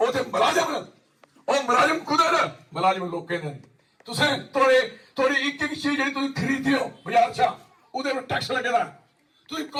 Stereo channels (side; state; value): both; identical; correlation 1.00